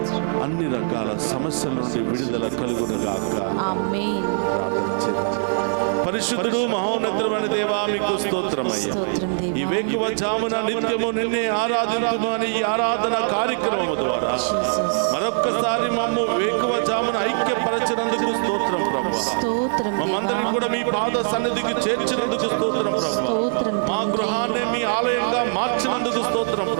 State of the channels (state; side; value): silent; left; digital silence